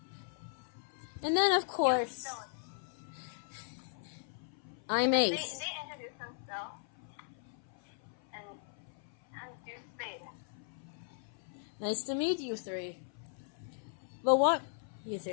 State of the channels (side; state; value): right; silent; 53 dB below the other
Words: And then, of course, I'm Ace. They introduced themselves, and I'm Deuce Spade. Nice to meet you three. But what, you